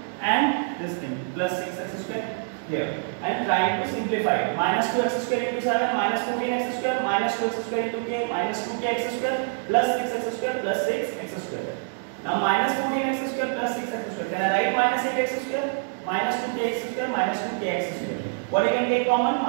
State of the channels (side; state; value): left; silent; digital silence